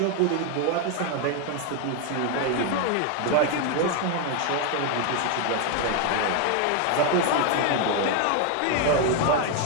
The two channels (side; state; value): both; different; correlation 0.01